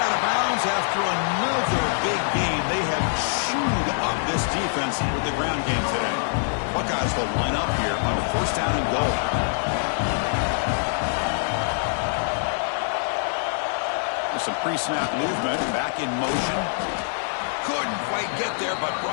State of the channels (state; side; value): silent; right; digital silence